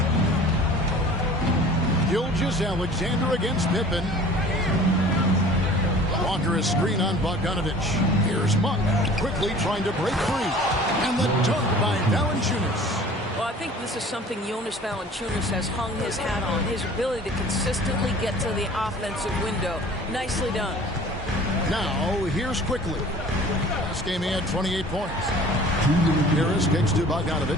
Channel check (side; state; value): both; normal; correlation 0.46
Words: Gilgeous-Alexander against Pippen. Walker is screen on Bogdanovich. Here's Monk quickly trying to break free. And the dunk by Valanciunas. Well, I think this is something Jonas Valanciunas has hung his hat on. His ability to consistently get to the offensive window. Nicely done. Now, here's quickly. Last game he had 28 points. Harris kicks to